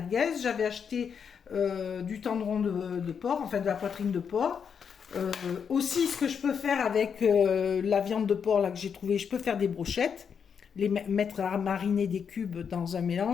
J'avais acheté du tendron de porc, enfin de la poitrine de porc. Aussi, ce que je peux faire avec la viande de porc là que j'ai trouvé, je peux faire des brochettes, les mettre à mariner des cubes dans un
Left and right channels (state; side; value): quieter; right; 6.9 dB